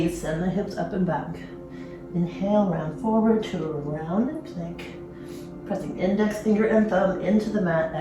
send the hips up and back. Inhale, round forward to a round and plank. Pressing index finger and thumb into the mat.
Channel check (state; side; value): identical; both; correlation 1.00